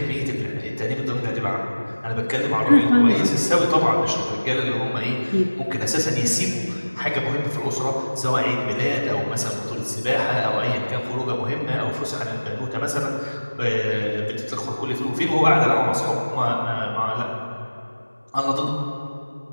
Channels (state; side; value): inverted; both; correlation -1.00